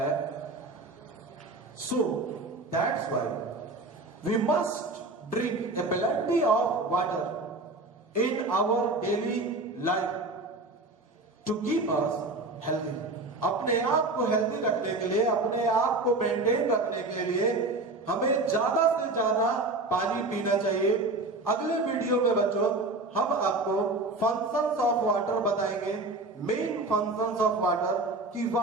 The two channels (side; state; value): left; quieter; 3.1 dB